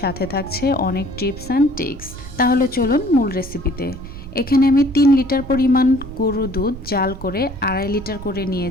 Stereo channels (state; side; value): noise; right; rumble, 13 dB below the sound